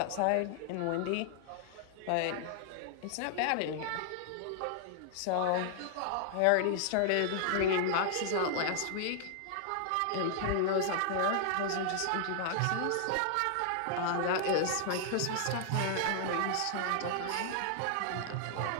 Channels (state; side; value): different; both; correlation -0.01